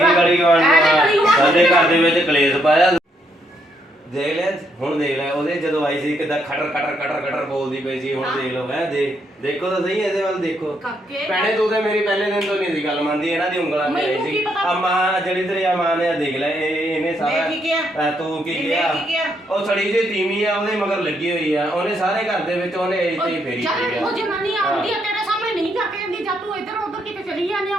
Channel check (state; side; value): normal; both; correlation 0.75